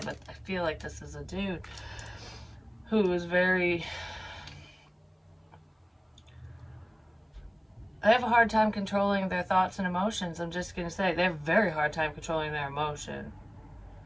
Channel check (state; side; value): identical; both; correlation 1.00